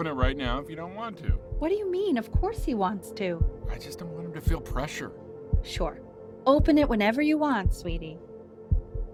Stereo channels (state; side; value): identical; both; correlation 1.00